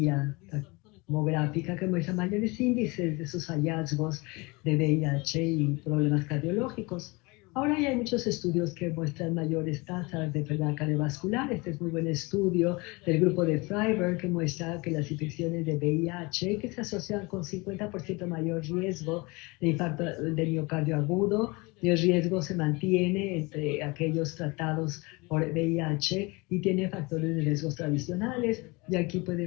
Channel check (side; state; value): right; quieter; 25.8 dB